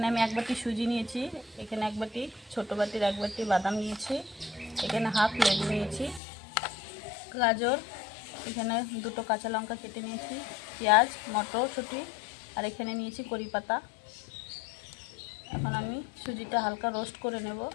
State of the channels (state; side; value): drops out; right; at 6.2 s